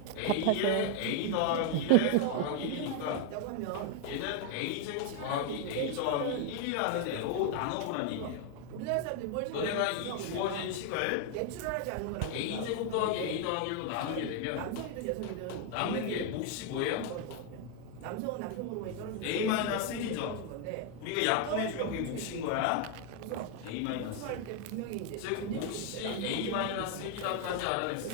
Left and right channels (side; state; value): both; different; correlation 0.01